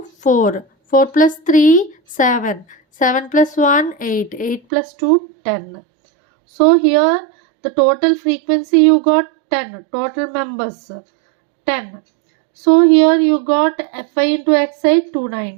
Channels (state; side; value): drops out; left; at 4.6 s